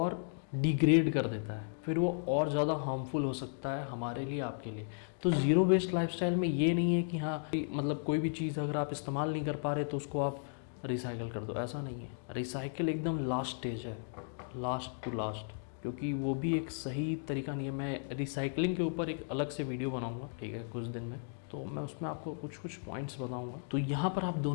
डिग्रेड कर देता है, फिर वो और ज़्यादा हार्मफुल हो सकता है हमारे लिए, आपके लिए। तो ज़ीरो वेस्ट लाइफस्टाइल में ये नहीं है कि हाँ मतलब कोई भी चीज़ अगर आप इस्तेमाल नहीं कर पा रहे तो उसको आप रिसाइकिल कर दो, ऐसा नहीं है। रिसाइकिल एकदम लास्ट स्टेज है, लास्ट टू लास्ट, क्योंकि वो भी एक सही तरीका नहीं है। मैं रिसाइकलिंग के ऊपर एक अलग से वीडियो बनाऊंगा, ठीक है, कुछ दिन में, तो मैं उसमें आपको कुछ कुछ पॉइंट्स बताऊंगा। तो यहाँ पर आप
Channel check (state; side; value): silent; right; digital silence